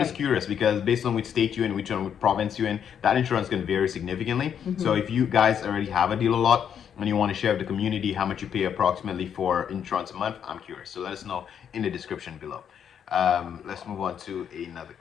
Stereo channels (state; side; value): quieter; right; 8.4 dB